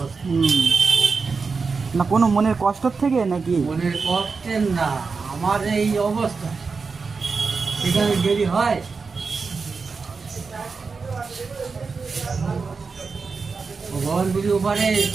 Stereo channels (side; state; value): left; quieter; 4.8 dB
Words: না কোনো মনের কষ্টর থেকে নাকি? মনের কষ্টের না, আমার এই অবস্থা, সেখানে দেরি হয়। ভগবানপুরি ওপারে